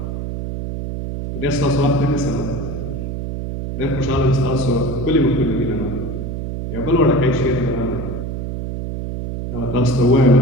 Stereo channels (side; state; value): right; noise; hum, 5 dB below the sound